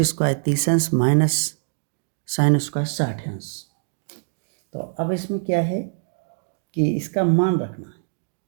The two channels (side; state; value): left; silent; digital silence